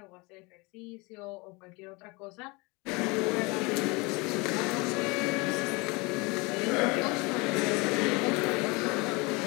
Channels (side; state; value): right; quieter; 26.4 dB